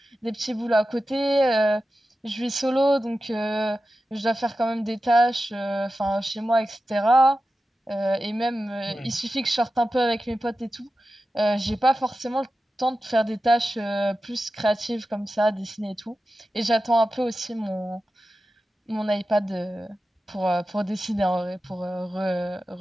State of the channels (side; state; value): both; normal; correlation 0.93